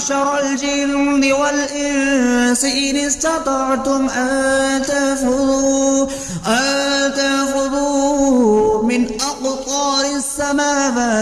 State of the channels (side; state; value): both; identical; correlation 1.00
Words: الجن والإنس إن استطعتم أن تنفذوا من أقطار